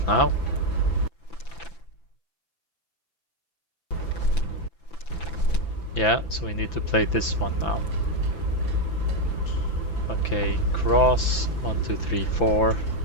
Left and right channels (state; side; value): late; right; 5.9 ms